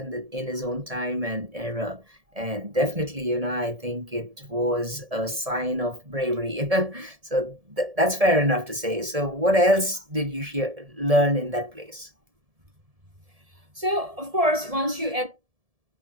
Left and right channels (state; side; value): late; left; 1.7 ms